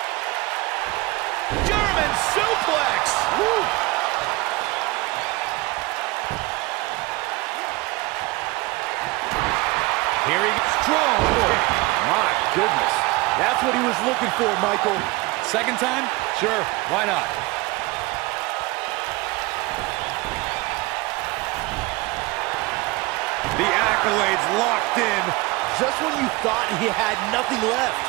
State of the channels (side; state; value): left; quieter; 22.9 dB